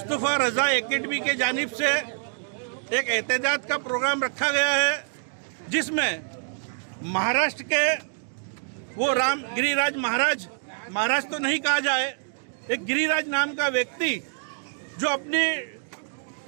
रज़ा एकेडमी के जानिब से एक एहतजाज का प्रोग्राम रखा गया है, जिसमें महाराष्ट्र के वो राम गिरिराज महाराज तो नहीं कहा जाए, एक गिरिराज नाम का व्यक्ति जो अपनी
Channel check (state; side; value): silent; left; digital silence